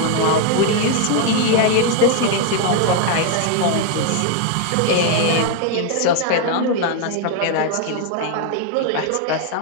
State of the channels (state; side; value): different; both; correlation 0.01